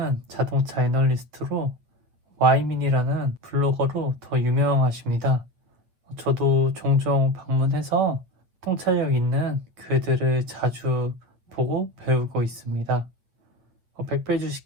자동차 애널리스트로 와이민이라는 블로거로 더 유명하십니다. 저도 종종 방문해서 통찰력 있는 글들을 자주 보고 배우고 있습니다. 100배 주식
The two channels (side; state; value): left; late; 8.5 ms